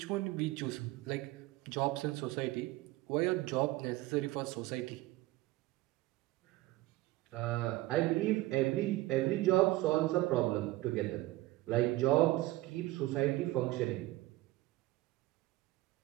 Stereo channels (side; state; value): left; quieter; 18.3 dB